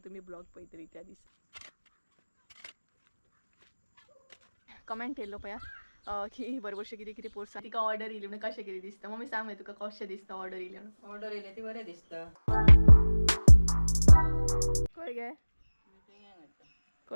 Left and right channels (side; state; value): both; inverted; correlation -1.00